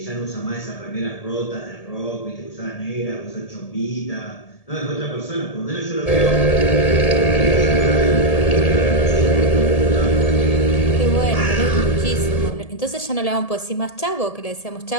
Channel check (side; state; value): right; late; 1.7 ms